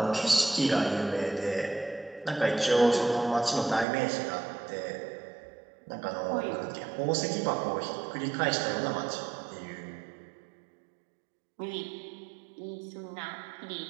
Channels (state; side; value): drops out; left; at 3.9 s